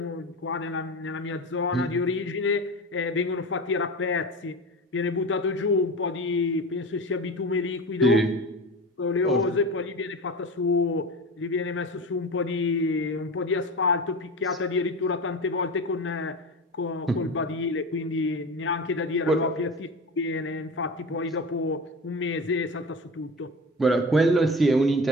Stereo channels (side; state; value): both; normal; correlation 0.29